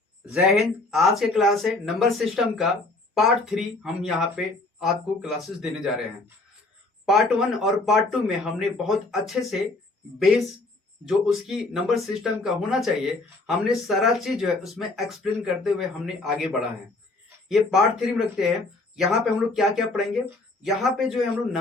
जय हिंद। आज के क्लास है नंबर सिस्टम का पार्ट 3। हम यहाँ पे आपको क्लासेस देने जा रहे हैं। पार्ट 1 और पार्ट 2 में हमने बहुत अच्छे से बेस जो उसकी नंबर सिस्टम का होना चाहिए, हमने सारा चीज जो है उसमें एक्सप्लेन करते हुए हमने आगे बढ़ा है। ये पार्ट 3 में रखते हैं। यहाँ पे हम लोग क्या क्या पढ़ेंगे, यहाँ पे जो है हम लोग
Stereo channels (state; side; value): quieter; right; 3.2 dB